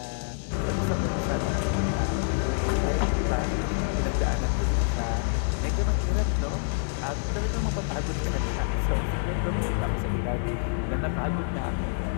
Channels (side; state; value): right; silent; digital silence